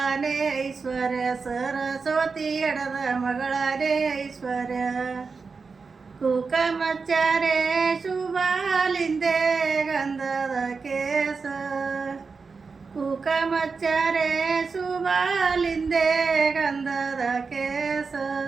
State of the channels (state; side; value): quieter; left; 4.8 dB